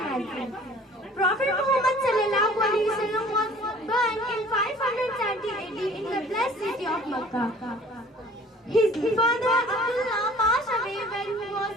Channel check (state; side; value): normal; both; correlation 0.50